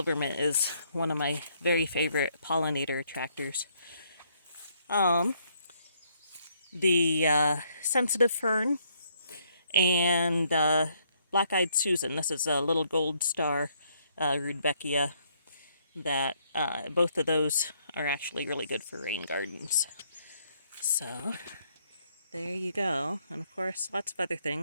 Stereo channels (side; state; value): both; inverted; correlation -0.70